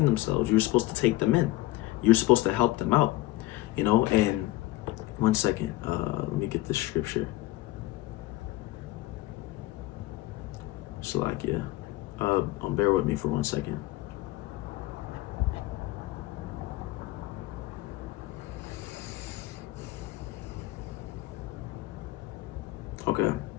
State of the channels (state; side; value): quieter; right; 17.9 dB